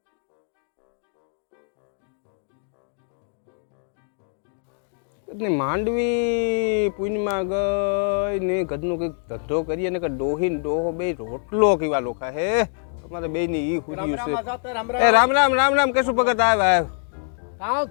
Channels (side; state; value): right; silent; 62 dB below the other